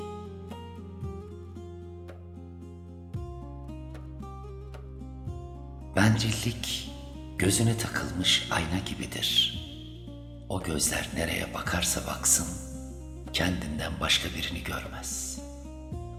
Bencillik gözüne takılmış ayna gibidir. O gözler nereye bakarsa baksın, kendinden başka birini görmez.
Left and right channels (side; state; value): both; identical; correlation 1.00